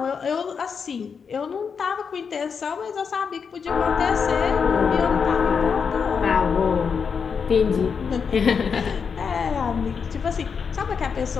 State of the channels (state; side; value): quieter; right; 6.1 dB